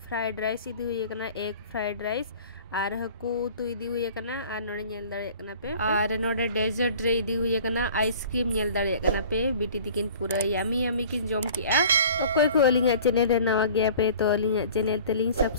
फ्राइड राइस इदी हुई कना एग फ्राइड राइस और हकू तो इदी हुई कना और नोडे नेल दाड़े कना पे और नोडे डेजर्ट रे इदी हुई कना आइसक्रीम नेल दाड़े कना पे बिटी दिकिन पूरा यामी यामी किन जम किया। ओकोय को अलिंगा चैनल रे नवा गया पे तो अलिंगा चैनल तलिंग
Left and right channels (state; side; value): inverted; both; correlation -0.47